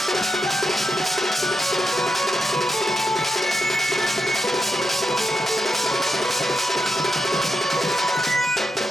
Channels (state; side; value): normal; both; correlation 0.85